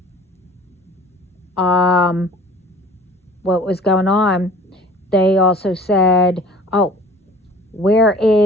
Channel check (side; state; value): both; normal; correlation 0.47